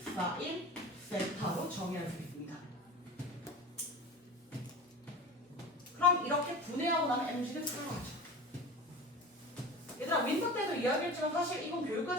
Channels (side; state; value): both; normal; correlation 0.33